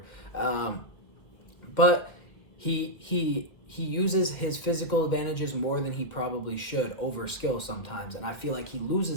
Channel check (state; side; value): late; right; 1.7 ms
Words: But he uses his physical advantages more than he probably should over skill sometimes. And I feel like he